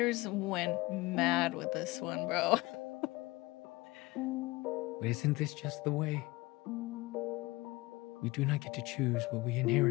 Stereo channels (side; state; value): right; quieter; 21.6 dB